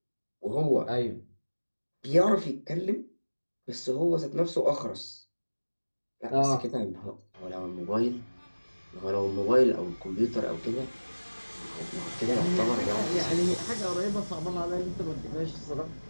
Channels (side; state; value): both; inverted; correlation -1.00